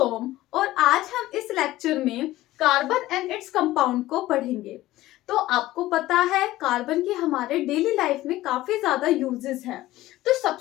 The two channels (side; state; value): right; quieter; 16.3 dB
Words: और आज हम इस लेक्चर में कार्बन एंड इट्स कंपाउंड को पढ़ेंगे। तो आपको पता है कार्बन की हमारे डेली लाइफ में काफी ज्यादा यूजेस हैं। तो